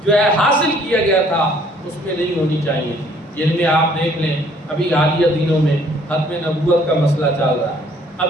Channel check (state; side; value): normal; both; correlation 0.60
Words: جو ہے حاصل کیا گیا تھا اس میں نہیں ہونی چاہیے تھی۔ جن میں آپ دیکھ لیں ابھی حالیہ دنوں میں ختم نبوت کا مسئلہ چل رہا ہے،